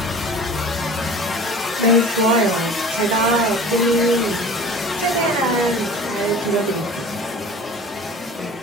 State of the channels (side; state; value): both; normal; correlation 0.41